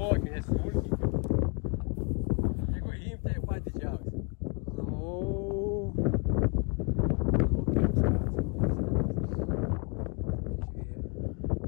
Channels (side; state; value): right; quieter; 31.9 dB